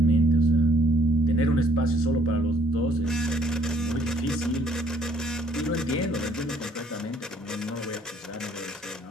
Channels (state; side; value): normal; both; correlation 0.63